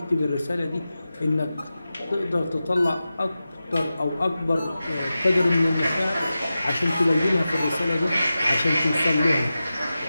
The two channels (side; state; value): both; inverted; correlation -0.94